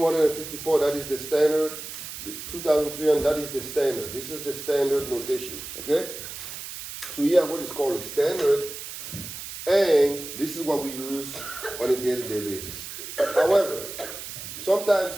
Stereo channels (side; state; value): right; noise; hiss, 10 dB below the sound